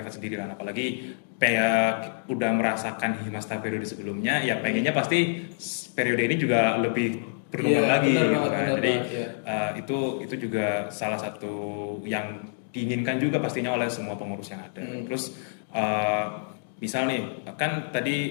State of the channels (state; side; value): silent; right; digital silence